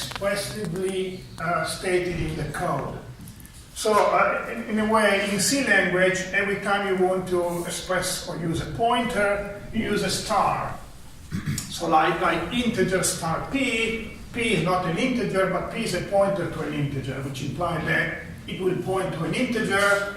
stated in the code. So in a way, in C language, every time you want to express or use a pointer, you use a star. So like integer star p is not an integer, but p is a pointer to an integer, which implies that it will point to an integer,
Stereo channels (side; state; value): both; identical; correlation 1.00